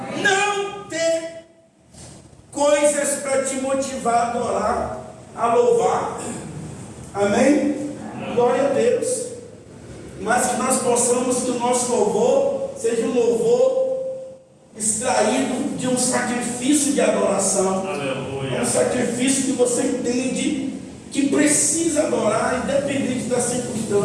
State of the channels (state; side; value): identical; both; correlation 1.00